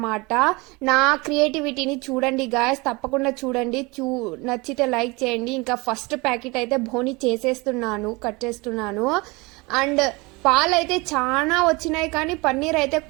నా క్రియేటివిటీని చూడండి గాయస్, తప్పకుండా చూడండి. నచ్చితే లైక్ చేయండి. ఇంకా ఫస్ట్ ప్యాకెట్ అయితే బోని చేసేస్తున్నాను, కట్ చేస్తున్నాను. అండ్ పాలు అయితే చాలా వచ్చినాయి, కానీ పన్నీర్ అయితే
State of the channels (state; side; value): quieter; left; 25.4 dB